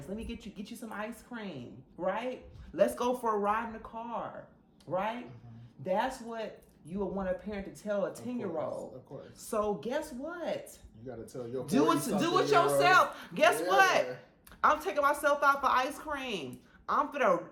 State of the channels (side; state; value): both; identical; correlation 1.00